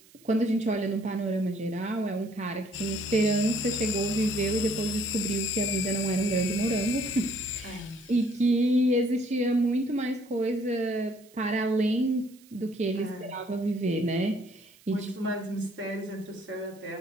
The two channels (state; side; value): noise; right; hiss, 27 dB below the sound